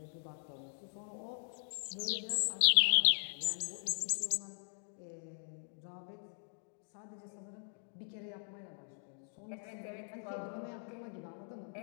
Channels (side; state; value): right; silent; digital silence